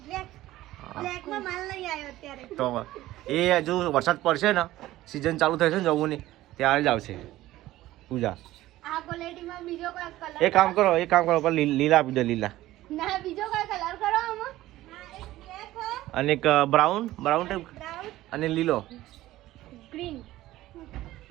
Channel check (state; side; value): quieter; left; 15.8 dB